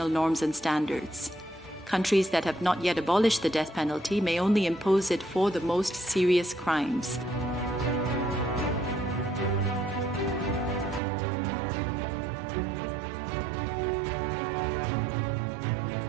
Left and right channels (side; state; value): left; drops out; at 11.0 s